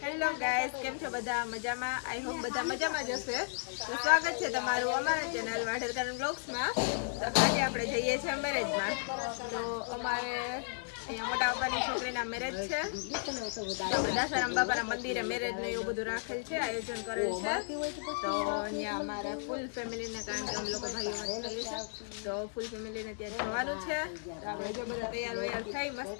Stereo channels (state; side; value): silent; right; digital silence